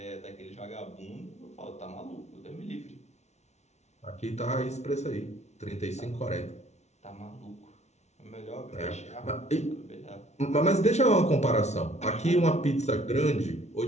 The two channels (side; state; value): right; late; 0.32 ms